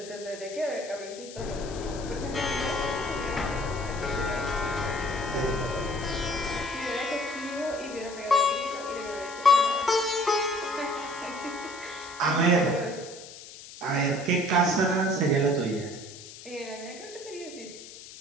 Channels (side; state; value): left; noise; hiss, 15 dB below the sound